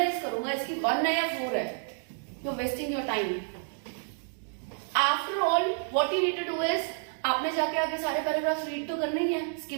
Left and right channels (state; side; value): silent; left; digital silence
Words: करूंगा इसकी 1 है या 4 है, you are wasting your time. After all what you need to do is, आपने जाके आगे सारे पैराग्राफ रीड तो करने ही है,